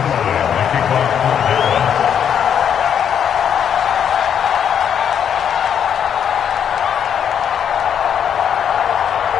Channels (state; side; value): quieter; right; 8.5 dB